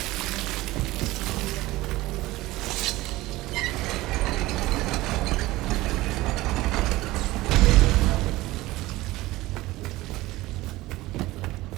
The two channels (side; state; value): left; quieter; 18.6 dB